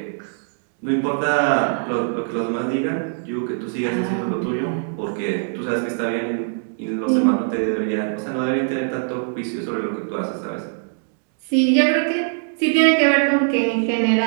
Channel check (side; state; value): left; silent; digital silence